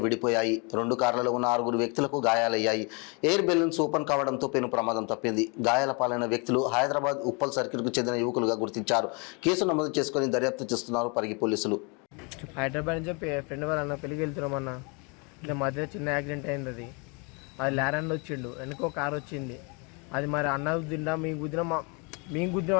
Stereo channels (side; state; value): right; quieter; 32.4 dB